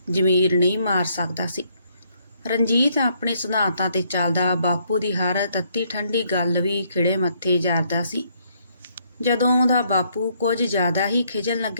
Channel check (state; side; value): inverted; both; correlation -0.70